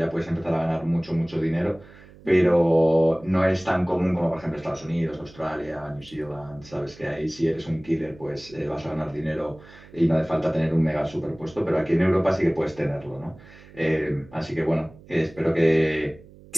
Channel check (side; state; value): right; noise; hum, 22 dB below the sound